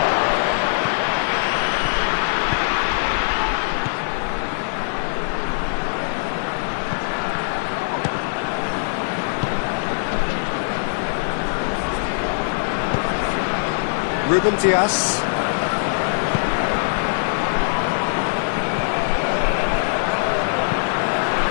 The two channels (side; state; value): right; silent; digital silence